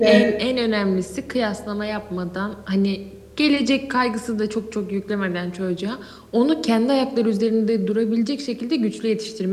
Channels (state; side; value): identical; both; correlation 1.00